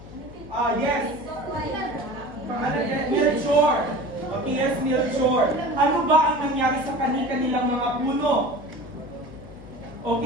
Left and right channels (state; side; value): noise; left; hum, 17 dB below the sound